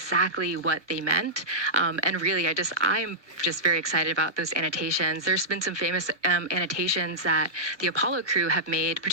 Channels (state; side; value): late; left; 1.2 ms